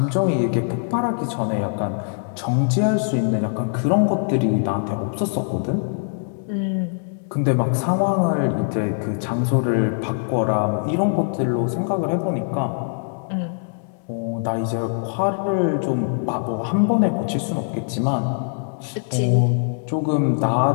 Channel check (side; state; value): right; silent; 64 dB below the other